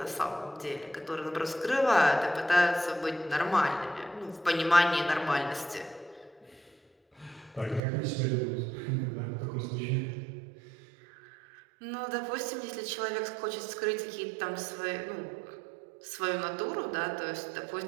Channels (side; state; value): left; drops out; at 7.8 s